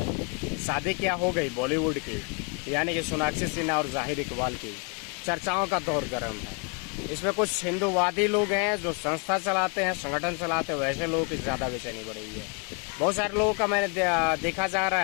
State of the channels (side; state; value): right; quieter; 35.9 dB